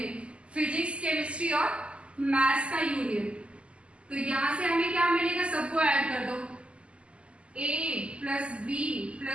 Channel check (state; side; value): late; left; 0.055 ms